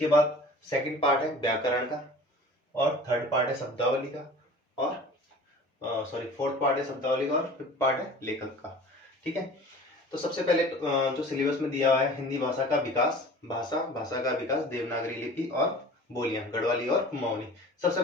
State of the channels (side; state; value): both; normal; correlation 0.42